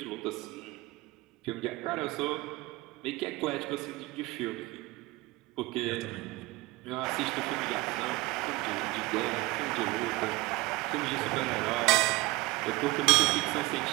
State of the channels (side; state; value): left; quieter; 21.6 dB